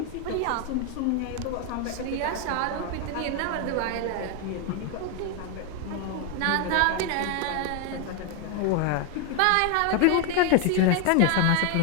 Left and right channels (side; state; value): both; different; correlation 0.01